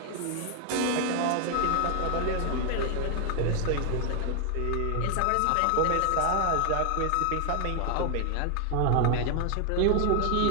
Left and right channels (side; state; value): both; different; correlation 0.00